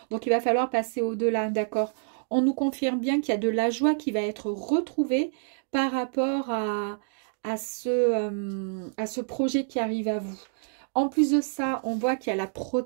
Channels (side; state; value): left; silent; digital silence